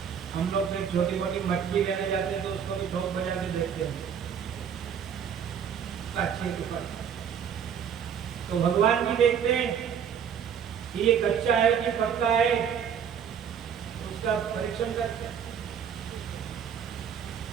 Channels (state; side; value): quieter; left; 7.9 dB